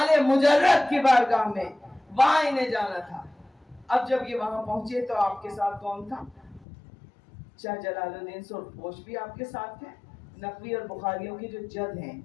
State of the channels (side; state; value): right; drops out; at 6.7 s